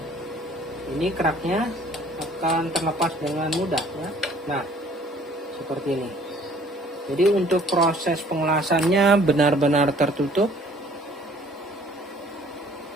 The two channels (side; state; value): both; normal; correlation 0.56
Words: ini keraknya akan terlepas dengan mudah ya. Nah, seperti ini. Jadi untuk proses pengelasannya benar-benar tertutup.